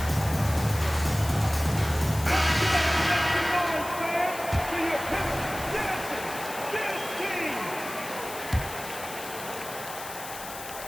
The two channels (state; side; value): noise; left; hiss, 11 dB below the sound